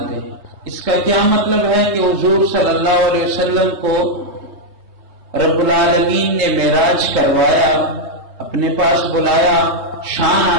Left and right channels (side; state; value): left; late; 3.2 ms